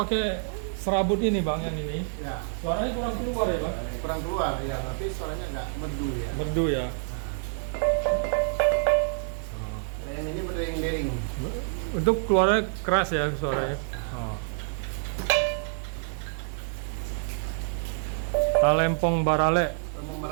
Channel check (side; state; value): left; silent; 60 dB below the other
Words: serabut ini bang yang ini, Ya. suaranya kurang keluar ya bang? Kurang keluar ya, tapi suaranya nggak merdu ya. Merdu ya. Nah, yang ini berdering-dering. Untuk keluarnya keras ya suaranya. Oh. Talempong Barale Talempong